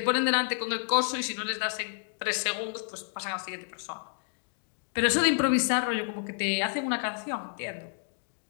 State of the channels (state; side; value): silent; right; digital silence